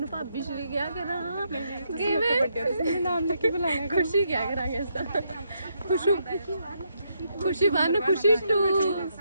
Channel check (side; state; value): both; inverted; correlation -0.78